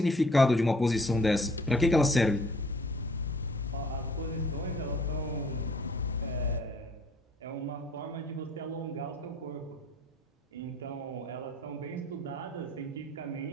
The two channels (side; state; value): both; normal; correlation 0.57